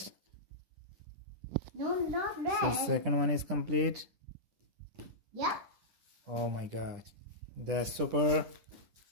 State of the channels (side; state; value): left; late; 10 ms